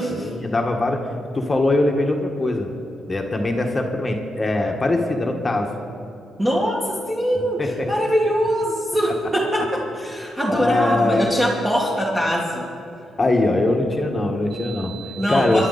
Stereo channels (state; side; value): normal; both; correlation 0.87